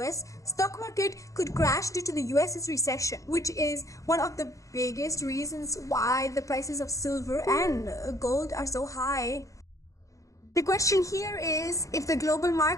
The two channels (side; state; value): right; late; 0.16 ms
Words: stock market could crash due to the US's recession, which is one of the biggest reasons why the prices of silver and gold are so high. The question here is, if the global